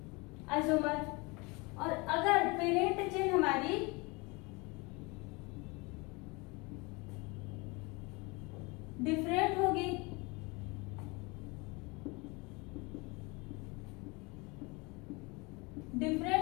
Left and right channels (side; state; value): right; quieter; 27.0 dB